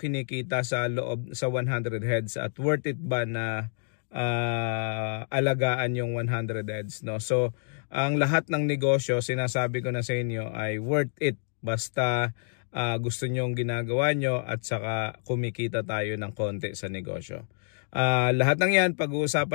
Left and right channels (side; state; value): right; silent; digital silence